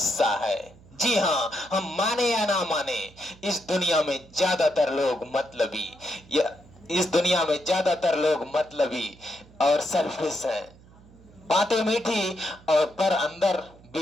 है। जी हाँ, हम माने या ना माने, इस दुनिया में ज्यादातर लोग मतलबी, या इस दुनिया में ज्यादातर लोग मतलबी और सेल्फिश हैं। बातें मीठी और पर अंदर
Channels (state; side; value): noise; right; hum, 24 dB below the sound